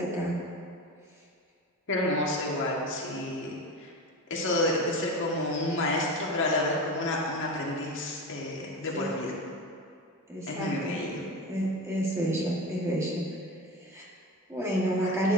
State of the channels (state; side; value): normal; both; correlation 0.26